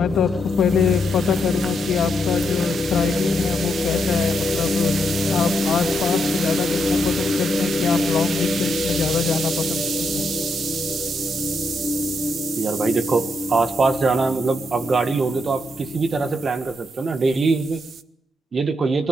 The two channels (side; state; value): both; normal; correlation 0.80